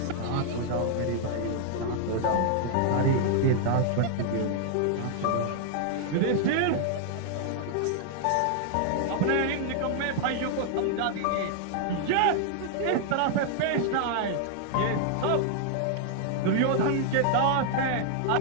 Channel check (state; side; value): different; both; correlation 0.00